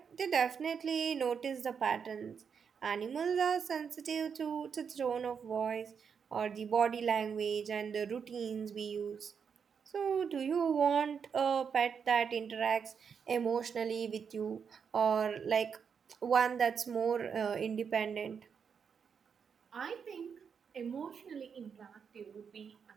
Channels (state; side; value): quieter; left; 6.6 dB